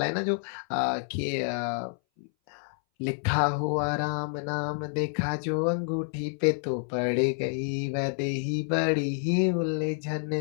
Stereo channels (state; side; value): silent; right; 59 dB below the other